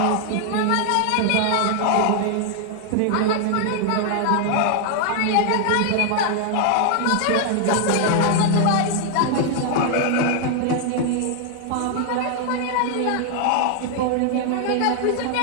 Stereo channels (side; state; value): both; different; correlation 0.00